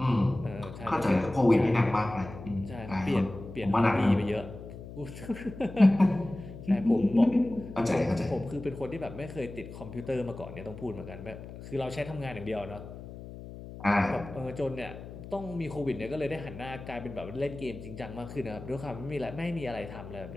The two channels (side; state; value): left; noise; hum, 13 dB below the sound